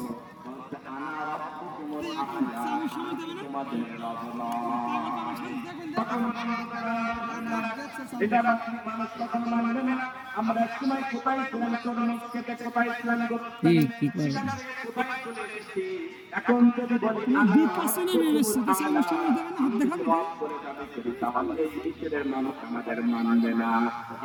আমরা সময় কোথায় ছিলাম, কোথায় ছিলাম, কি করে এখন যদি বলি তাহলে ঈশ্বরের মানুষ আমাদের মানবে না।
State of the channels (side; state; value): both; identical; correlation 1.00